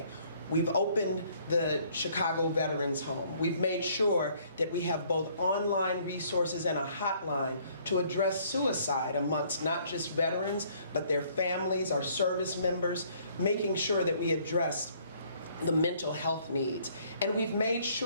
We've opened the Chicago Veterans Home. We've made sure that we have both online resources and a hotline to address suicide amongst not just veterans, but their families, our service members, making sure that we address the mental health needs. And we've made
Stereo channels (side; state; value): both; inverted; correlation -0.62